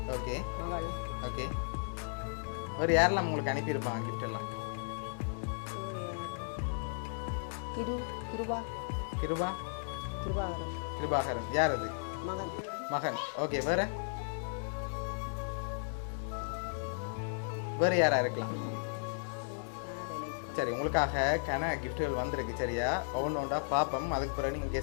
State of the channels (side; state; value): right; silent; digital silence